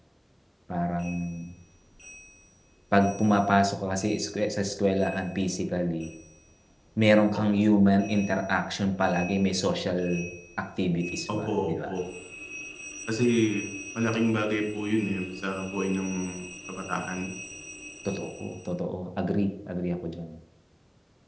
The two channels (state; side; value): identical; both; correlation 1.00